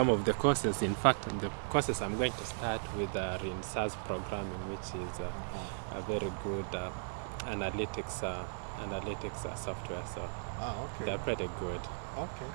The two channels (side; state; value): left; silent; 54 dB below the other